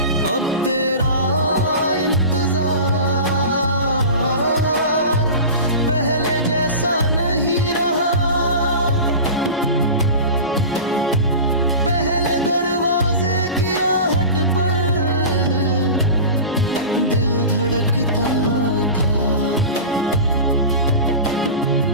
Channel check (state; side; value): inverted; both; correlation -0.32